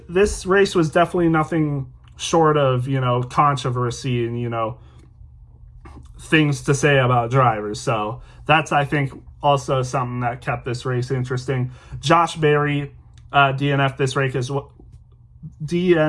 race was definitely nothing short of, controversy and, things to say about drivers, so that's, I think, also something that kept this race interesting. Josh Berry DNF this race as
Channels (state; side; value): identical; both; correlation 1.00